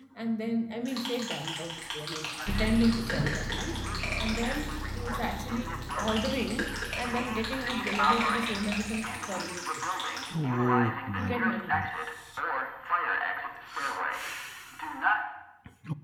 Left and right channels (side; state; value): both; identical; correlation 1.00